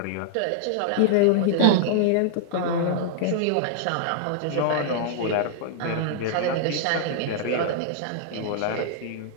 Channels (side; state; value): both; different; correlation -0.01